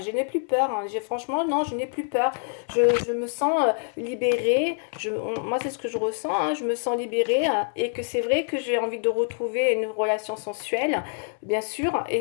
je n'ai plus peur, hein, franchement, non, je n'ai plus peur, je me sens libérée, moi c'est ce que je ressens, hein, je me sens libérée hein, et que c'est vrai que j'ai envie de retrouver une relation sensuelle, bien sûr,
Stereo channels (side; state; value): right; silent; 59 dB below the other